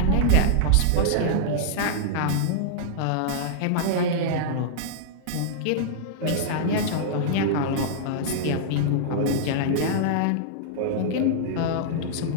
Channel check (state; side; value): different; both; correlation -0.02